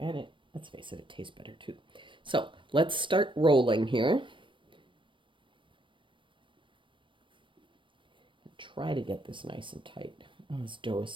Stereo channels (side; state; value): left; late; 0.24 ms